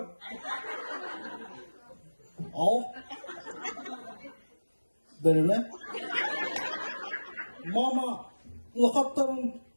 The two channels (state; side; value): inverted; both; correlation -1.00